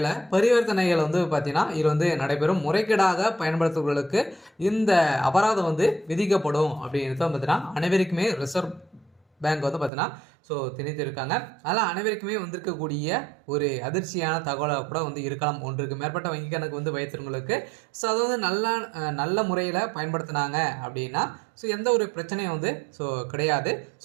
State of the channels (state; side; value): drops out; left; at 9.9 s